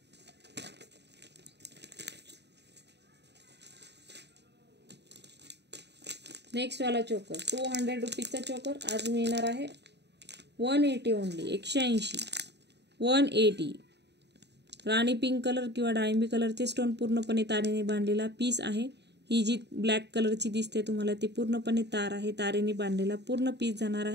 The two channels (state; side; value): late; left; 0.50 ms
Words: नेक्स्ट वाला चोकर. 200 रुपीजचा चोकर आज मिळणार आहे 180 ओनली. 180 180. राणी पिंक कलर किंवा डाळिंबी कलरचे स्टोन पूर्णपणे तारेने बांधलेला पीस आहे. ही जी ब्लॅक कलरची दिसते तुम्हाला ती पूर्णपणे तार आहे. तारेने बांधलेला पूर्ण पीस जाणार